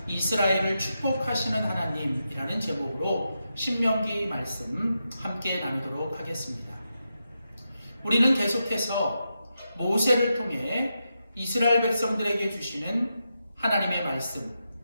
이스라엘을 축복하시는 하나님이라는 제목으로 신명기 말씀 함께 나누도록 하겠습니다. 우리는 계속해서 모세를 통해 이스라엘 백성들에게 주시는 하나님의 말씀,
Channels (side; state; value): both; inverted; correlation -0.87